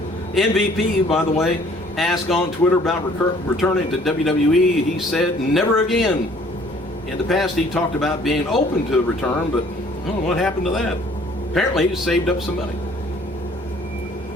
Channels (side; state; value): both; normal; correlation 0.57